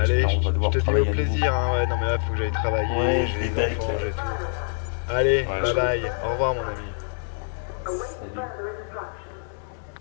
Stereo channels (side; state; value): right; silent; digital silence